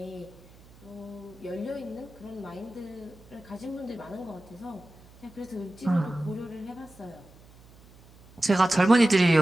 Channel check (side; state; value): right; noise; hum, 24 dB below the sound